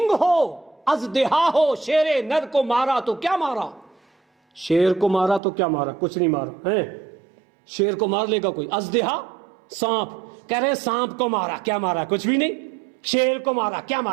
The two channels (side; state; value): left; drops out; at 5.4 s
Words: ہو ازدہا ہو شیر نر کو مارا تو کیا مارا. شیر کو مارا تو کیا مارا؟ کچھ نہیں مارا ہے. شیر کو مار لے گا کوئی؟ ازدہا سانپ، کہہ رہے سانپ کو مارا، کیا مارا؟ کچھ بھی نہیں. شیر کو مارا، کیا